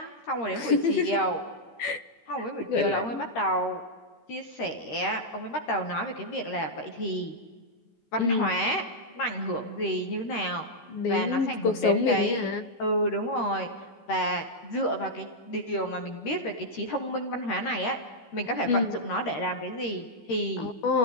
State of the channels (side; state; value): right; late; 13 ms